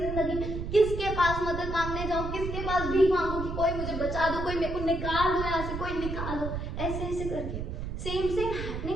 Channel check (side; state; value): right; noise; rumble, 5 dB below the sound